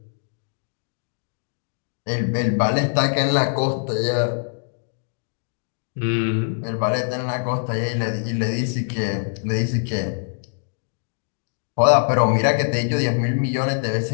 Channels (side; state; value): right; silent; digital silence